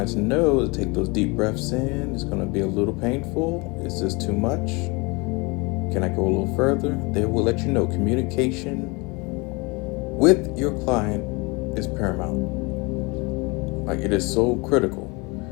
know to take those deep breaths in. It's going to be a little painful. Is this too much? Can I go a little further? They will let you know. Communication with your client is paramount. Like, it is so critical.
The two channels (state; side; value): quieter; right; 27.4 dB